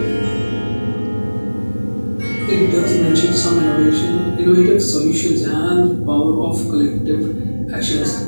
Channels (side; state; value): both; inverted; correlation -1.00